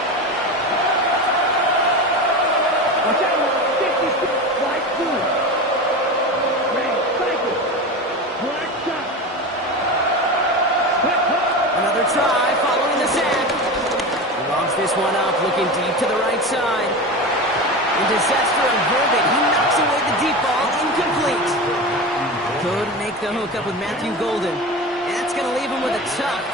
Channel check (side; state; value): both; normal; correlation 0.26